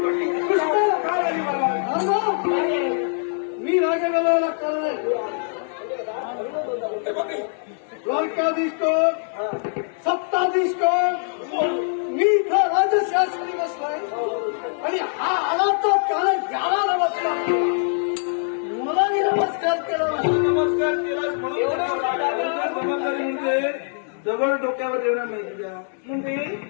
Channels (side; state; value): right; silent; digital silence